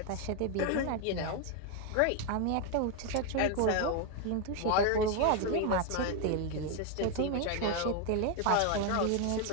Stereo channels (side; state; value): both; different; correlation 0.01